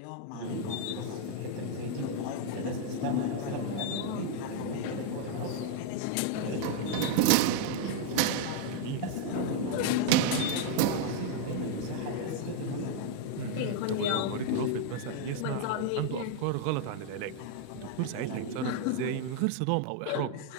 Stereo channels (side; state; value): both; different; correlation 0.00